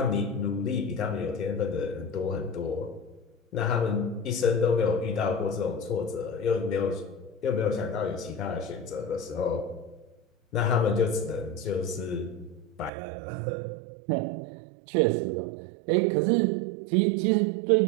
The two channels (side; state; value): left; drops out; at 12.9 s